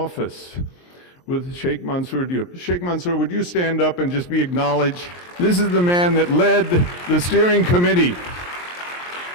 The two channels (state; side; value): late; right; 23 ms